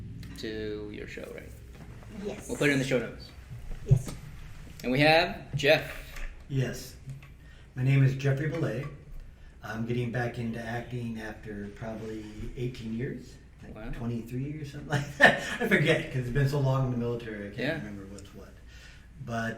to your show, right? Yes. We'll put it in the show notes. Yes. And we have Jeff. Yes. My name is Jeffrey Bele. I'm getting back into acting after probably 18 years. Wow. 23 or something like that. I forget because it's been so long in the military. I can't remember what's what.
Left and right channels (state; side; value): identical; both; correlation 1.00